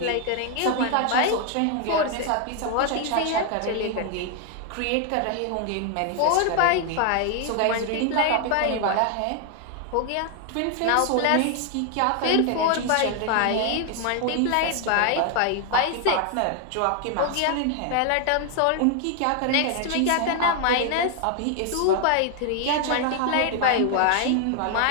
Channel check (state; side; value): different; both; correlation 0.00